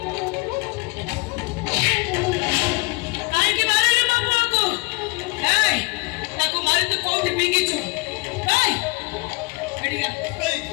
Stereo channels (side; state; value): right; quieter; 27.0 dB